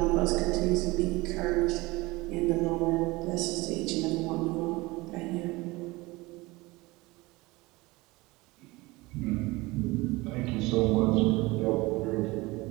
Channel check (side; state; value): left; quieter; 22.0 dB